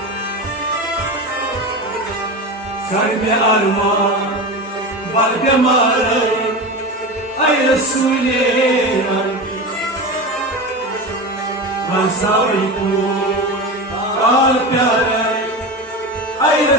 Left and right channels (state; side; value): normal; both; correlation 0.25